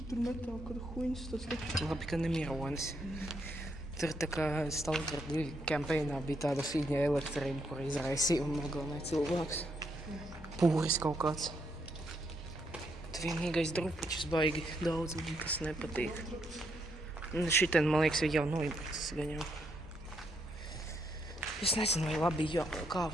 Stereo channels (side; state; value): both; normal; correlation 0.76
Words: metāli kāda huņas, tas taču. Labi, ka nemironis. Tur tā kā Stalker 2 kampēnā bija tāda fīņa elektrība, kur izraisīja un nogalināja cilvēks. Pūris kaut kāds. Tu vienīgais drupučus baigi daudz, man kas nepatīk. Šitien, man liekas, jau noibrucis gan jau. Es nezinu, vai labi